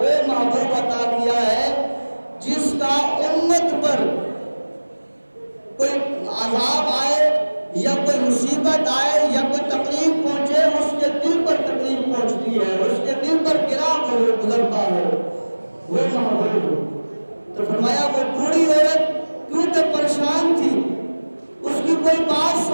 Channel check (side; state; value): both; inverted; correlation -1.00